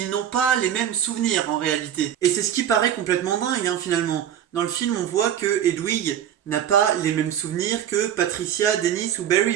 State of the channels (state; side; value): quieter; left; 10.1 dB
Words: n'ont pas les mêmes souvenirs en réalité. Et c'est ce qui paraît complètement dingue finalement. Dans le film, on voit que Hedwig n'a pas les mêmes souvenirs que Patricia, Dennis ou Barry